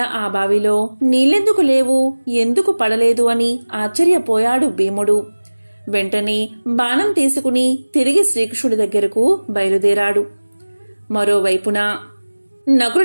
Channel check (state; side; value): inverted; both; correlation -1.00